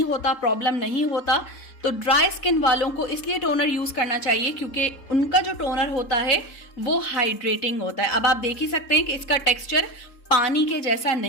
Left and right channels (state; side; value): late; right; 3.7 ms